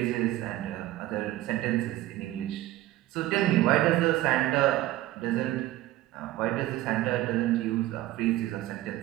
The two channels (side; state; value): left; quieter; 15.8 dB